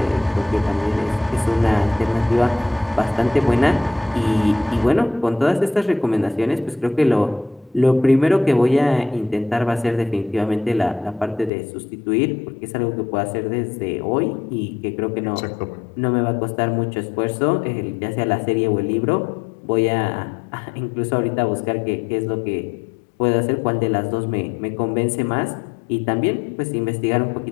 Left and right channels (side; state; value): right; drops out; at 11.5 s